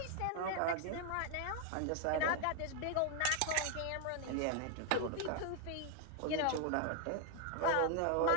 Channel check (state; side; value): different; both; correlation 0.00